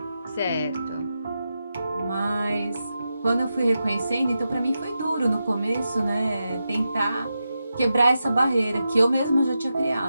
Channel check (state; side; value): inverted; both; correlation -0.89